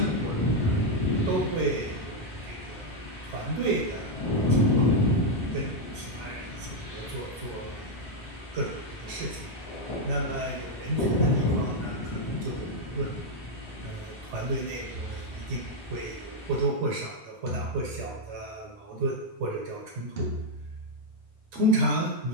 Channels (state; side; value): normal; both; correlation 0.01